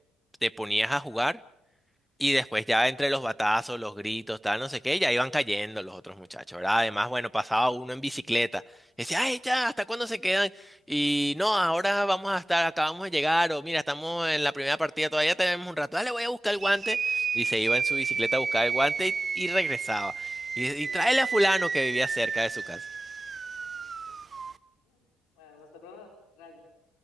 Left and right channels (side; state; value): both; normal; correlation 0.98